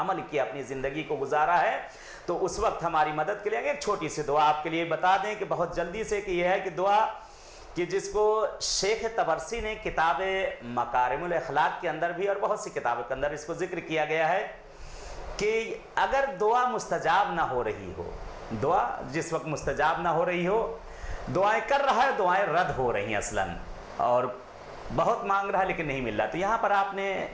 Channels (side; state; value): both; identical; correlation 1.00